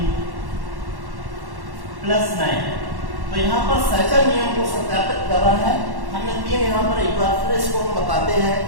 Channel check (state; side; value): late; left; 1.1 ms